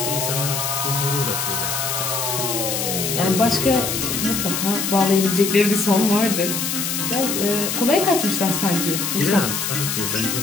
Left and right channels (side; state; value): left; noise; hiss, 1 dB below the sound